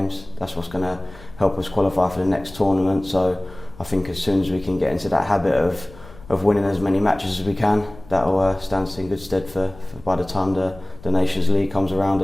That's what's going to help us qualify for the next tournament. So I think as soon as we can get into that habit of winning as many matches as we can, that'll stand us in good stead for by the time the Nations League comes around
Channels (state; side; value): noise; left; rumble, 19 dB below the sound